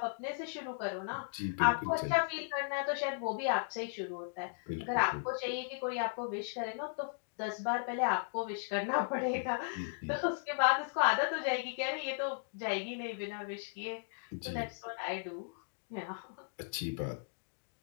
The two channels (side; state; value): right; silent; digital silence